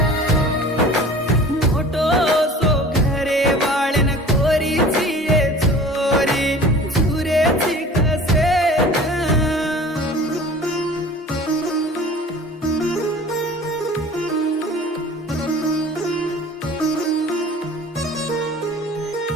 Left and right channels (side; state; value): both; normal; correlation 0.44